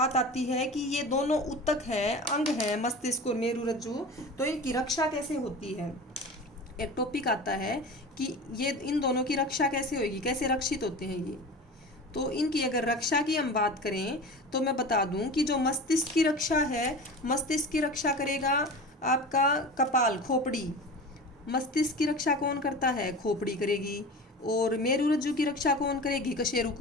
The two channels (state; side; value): normal; both; correlation 0.33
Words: आती है कि ये दोनों उत्तक हैं, अंग हैं मस्तिष्क और मेरुरज्जु, तो इनकी रक्षा कैसे होती है। एक टॉपिक आता है कि ये इन दोनों की रक्षा कैसे होगी, कैसे रक्षित होते हैं ये। तो इनकी अगर रक्षा की हम बात करें तो मैं बता दूं कि जो मस्तिष्क की रक्षा है, मस्तिष्क की रक्षा करेगा आपका कपाल, खोपड़ी। मस्तिष्क की रक्षा कौन करता है, खोपड़ी करेगी। और मेरुरज्जु की रक्षा कौन करेगी, कशेरुक